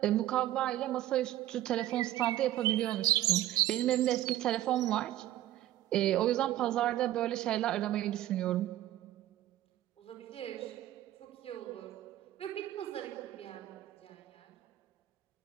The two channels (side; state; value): left; quieter; 13.8 dB